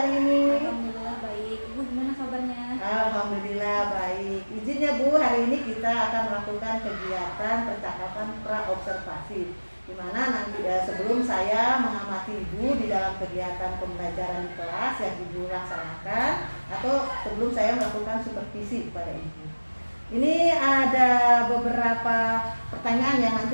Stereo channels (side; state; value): both; inverted; correlation -1.00